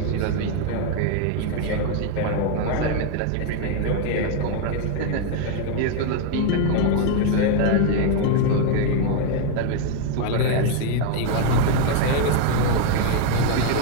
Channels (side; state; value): both; different; correlation 0.01